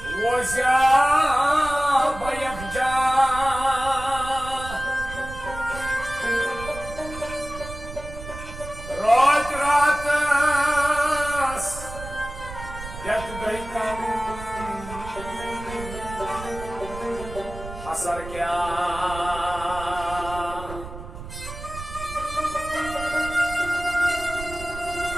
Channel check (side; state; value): right; noise; rumble, 12 dB below the sound